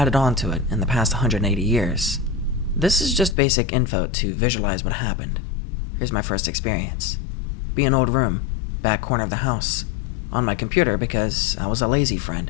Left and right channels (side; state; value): right; drops out; at 3.4 s